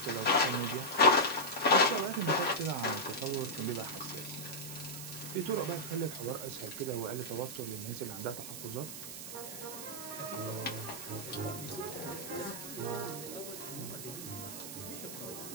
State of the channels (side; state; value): right; noise; hiss, 9 dB below the sound